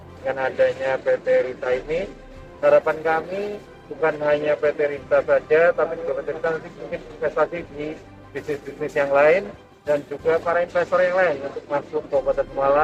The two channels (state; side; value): identical; both; correlation 1.00